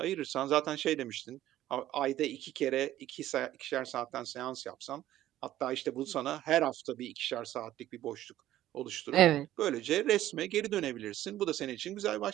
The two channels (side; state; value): left; quieter; 13.6 dB